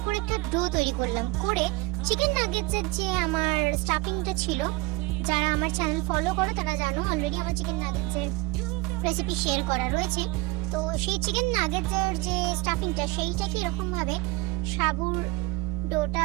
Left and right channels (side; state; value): left; quieter; 22.1 dB